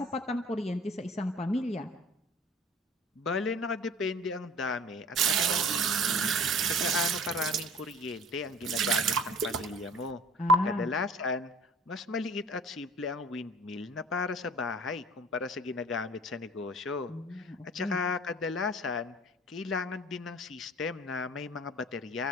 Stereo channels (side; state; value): both; normal; correlation 0.46